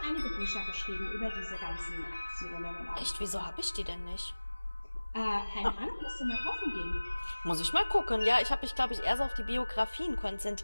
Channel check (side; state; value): both; inverted; correlation -1.00